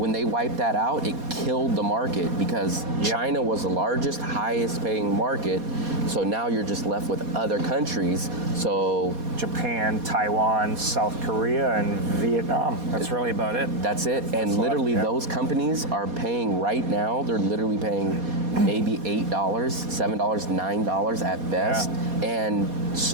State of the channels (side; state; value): left; late; 4.2 ms